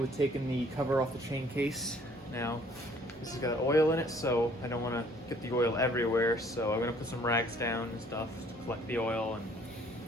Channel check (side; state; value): both; normal; correlation 0.59